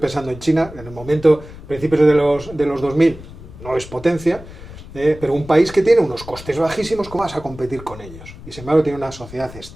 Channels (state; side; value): noise; left; rumble, 16 dB below the sound